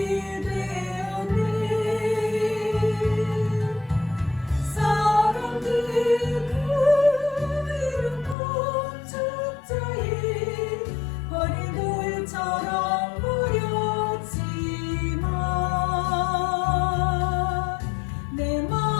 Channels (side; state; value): right; drops out; at 8.3 s